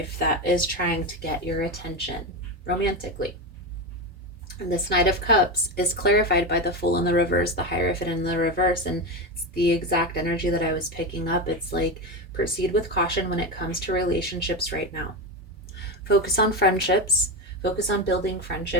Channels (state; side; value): normal; both; correlation 0.16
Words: that is trying to get your attention romantically. And this Knight of Cups is clarified by the Fool in the reverse, the Hierophant in the reverse, and it's the exact energy that I was picking up. It's like, proceed with caution when it comes to relationships right now. Focus on friendships. Focus on building